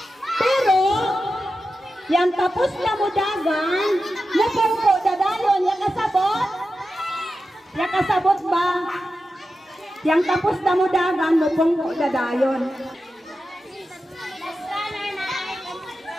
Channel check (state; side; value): normal; both; correlation 0.91